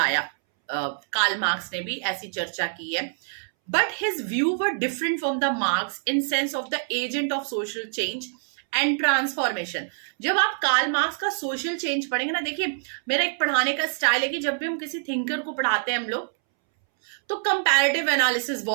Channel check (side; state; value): left; silent; 61 dB below the other